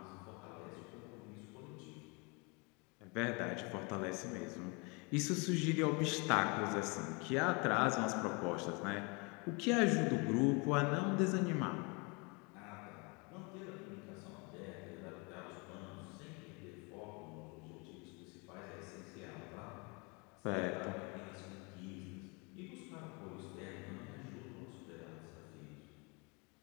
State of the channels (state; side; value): quieter; right; 30.5 dB